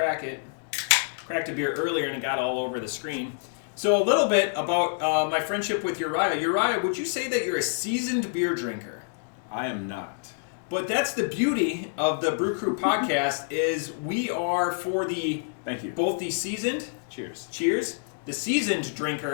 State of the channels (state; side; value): silent; right; digital silence